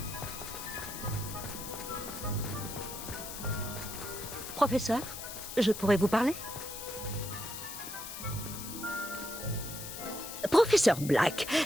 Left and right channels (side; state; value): left; noise; hiss, 9 dB below the sound